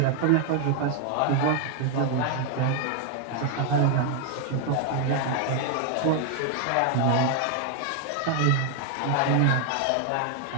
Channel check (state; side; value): different; both; correlation 0.00